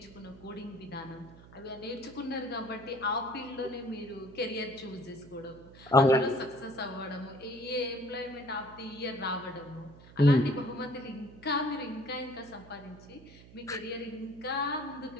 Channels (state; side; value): noise; right; hum, 20 dB below the sound